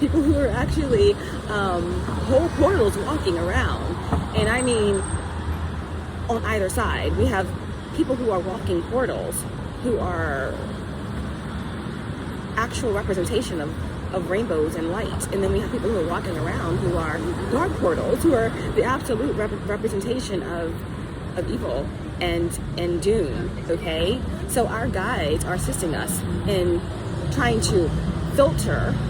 who are actually whole portals walking around, and I mean, on either side, we have people who are walking portals, who are actual representation of rainbows and light. And then we have people who are walking around who are dark portals, who are the absolute representation of evil and doom, okay? So our guides are assisting us in trying to filter,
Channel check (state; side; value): identical; both; correlation 1.00